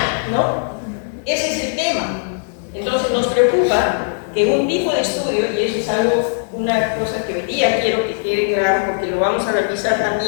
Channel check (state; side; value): silent; right; digital silence